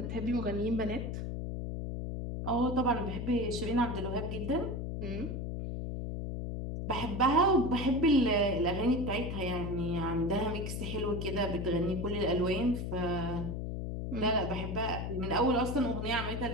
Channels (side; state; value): left; noise; hum, 4 dB below the sound